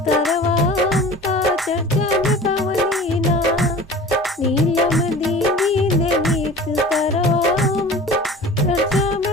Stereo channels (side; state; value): both; normal; correlation 0.40